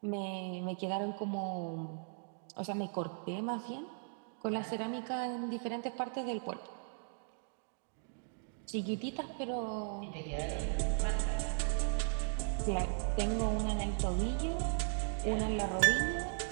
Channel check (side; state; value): left; silent; digital silence